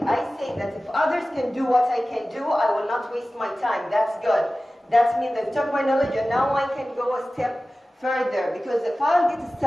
I say that if others can do what I can do, I will not waste my time. That's good. That means they took my knowledge and now I can go a step further, because if I'll get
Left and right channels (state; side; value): normal; both; correlation 0.96